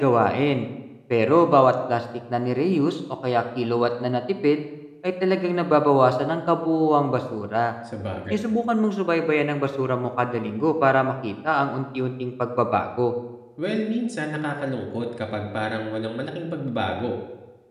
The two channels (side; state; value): both; identical; correlation 1.00